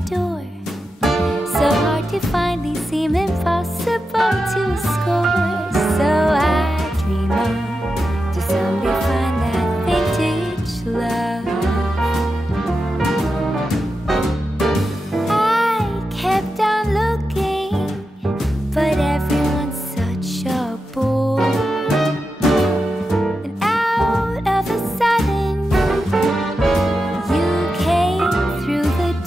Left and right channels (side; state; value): both; normal; correlation 0.89